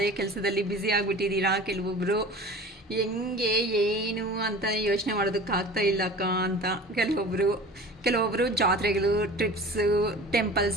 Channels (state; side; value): normal; both; correlation 0.40